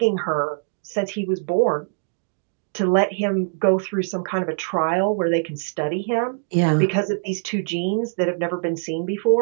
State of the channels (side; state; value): left; silent; digital silence